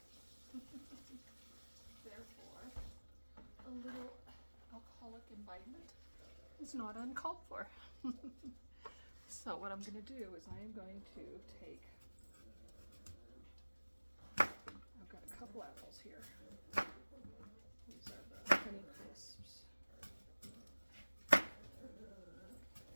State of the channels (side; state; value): both; inverted; correlation -1.00